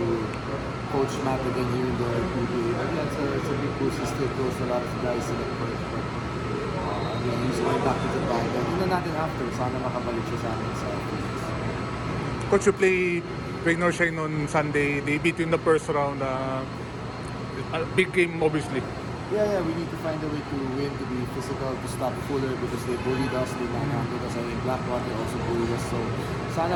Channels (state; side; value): identical; both; correlation 1.00